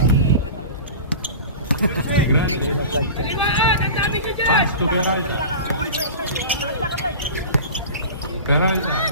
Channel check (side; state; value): both; inverted; correlation -0.34